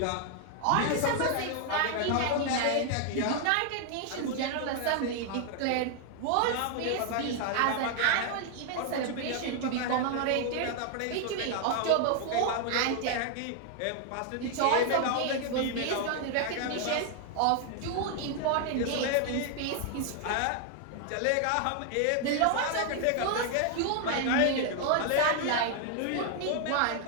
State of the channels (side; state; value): both; different; correlation 0.00